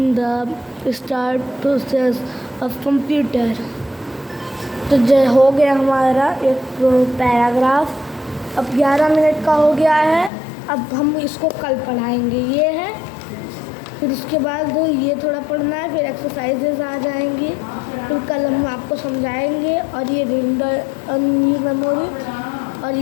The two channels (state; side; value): drops out; right; at 10.3 s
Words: the start process of computer। तो हो गया हमारा एक paragraph. अब 11 minute का हो गया है। अब हम इसको कल पढ़ाएंगे। ये है, फिर उसके बाद ये थोड़ा पढ़ना है, फिर एक्सरसाइजेज आ जाएंगी, फिर कल हम आपको समझाएंगे। और ये रीड ओनली मेमोरी और